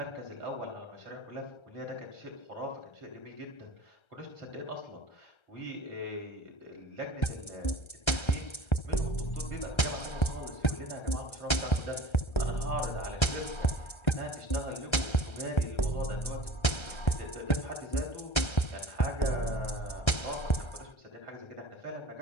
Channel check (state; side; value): late; right; 1.3 ms